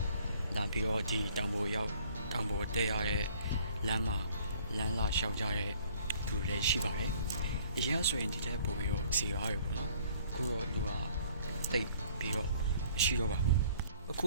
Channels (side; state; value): both; inverted; correlation -0.57